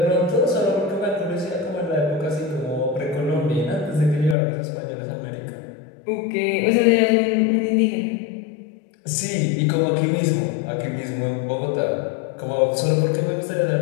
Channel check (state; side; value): drops out; right; at 4.4 s